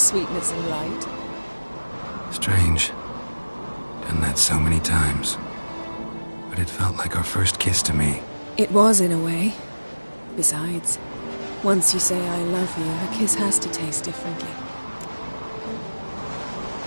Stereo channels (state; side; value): inverted; both; correlation -1.00